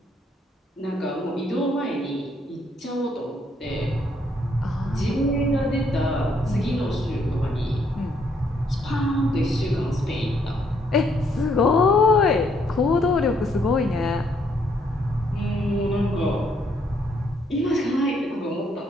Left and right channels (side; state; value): both; normal; correlation 0.70